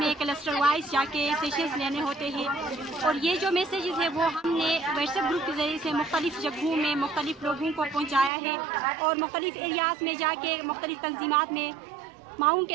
کلسٹر وائز جا کے سیشنز لینے ہوتے ہیں، اور یہ جو میسیجز ہے وہ ہم نے واٹس ایپ گروپ کے ذریعے سے مختلف جگہوں میں مختلف لوگوں کو پہنچایا ہے، اور مختلف ایریاز میں جا کے مختلف تنظیمات میں معاون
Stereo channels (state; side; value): drops out; left; at 8.3 s